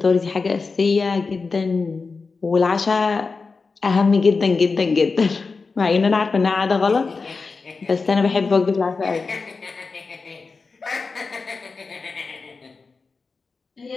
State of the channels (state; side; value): quieter; right; 4.4 dB